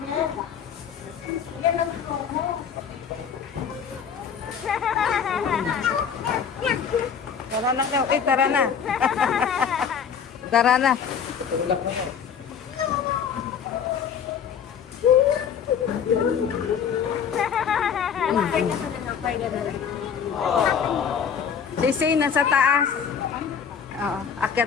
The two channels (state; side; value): quieter; right; 7.3 dB